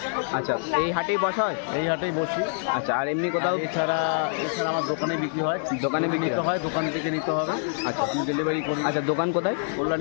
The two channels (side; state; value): right; silent; digital silence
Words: আচ্ছা, এই হাটেই বসা হয়? এই হাটেই বসি। আচ্ছা, আর এমনি কোথাও? এছাড়া আমার দোকানে বিক্রি হয়। দোকানে বিক্রি নিতে হয়? হয়, দোকান থেকে নিতে হবে। আচ্ছা, আমি ডেলিভারি করি। আচ্ছা, দোকান কোথায়?